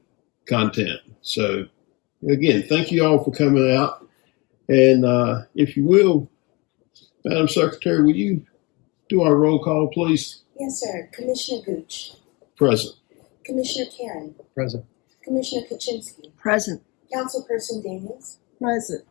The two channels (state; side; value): quieter; right; 26.7 dB